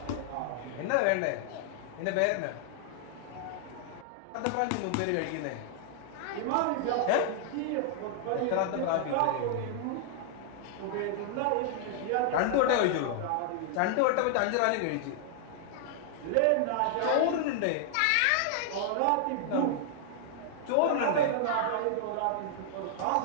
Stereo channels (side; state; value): both; different; correlation -0.01